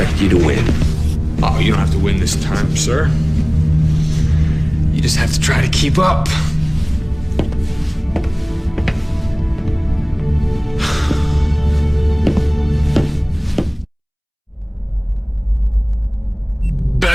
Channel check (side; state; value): both; identical; correlation 1.00